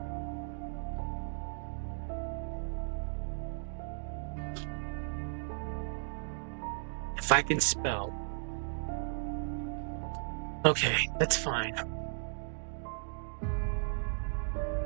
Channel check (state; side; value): silent; left; digital silence